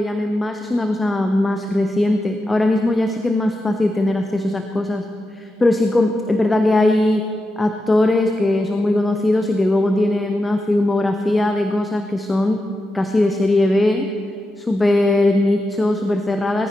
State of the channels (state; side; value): normal; both; correlation 0.88